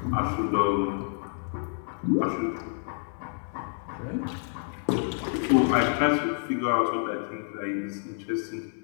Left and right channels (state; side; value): silent; right; 59 dB below the other